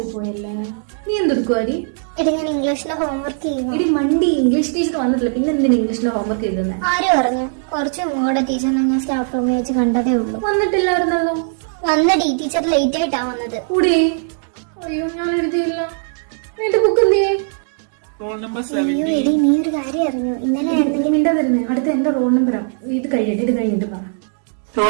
പോയല്ലേ. നീ എന്തെടുക്കുവാടി? ഞാൻ ഇംഗ്ലീഷിലെ ഹോംവർക്ക് ചെയ്യുന്നു. ഇടി മണ്ടി, ഇംഗ്ലീഷ് ടീച്ചർ വന്നിട്ടില്ല, പിന്നെ എന്തിനാ ഇംഗ്ലീഷിലെ ഹോംവർക്ക് ചെയ്തേ? ആര് പറഞ്ഞു? കുറച്ച് മുമ്പ് ടീച്ചറിനെ ഞാൻ സ്റ്റാഫ് റൂമിൽ വെച്ച് കണ്ടതേ ഉള്ളൂ. വന്നിട്ടില്ലായിരുന്നല്ലോ. വന്നടി, ടീച്ചർ ലേറ്റ് ആയിട്ടാ വന്നത്. കൂടി അയ്യോ, ഞാൻ എഴുതിയില്ല. എന്റെ ബുക്ക് എന്തേ? Roll number അയ്യോ 17. എടി, നീ ഒരു കാര്യം അറിഞ്ഞു? ഇന്നലെ ആയിരുന്നെങ്കിൽ മിണ്ടാ തരുന്നേ. അടുത്ത എന്റെ റോൾ നമ്പറാ. ഇത് കഴിഞ്ഞിട്ട് പറ.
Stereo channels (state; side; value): silent; left; digital silence